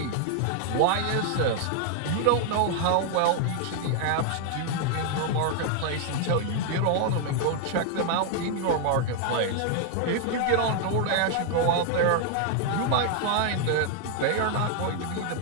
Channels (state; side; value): different; both; correlation 0.00